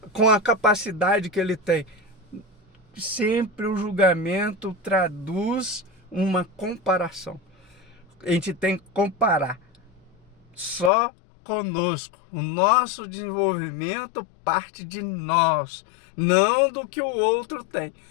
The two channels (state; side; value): drops out; right; at 10.9 s